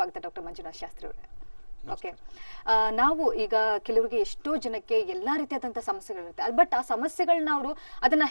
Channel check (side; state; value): both; inverted; correlation -1.00